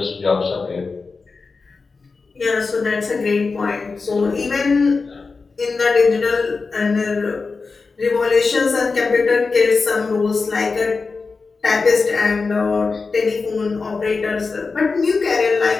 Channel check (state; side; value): quieter; right; 4.4 dB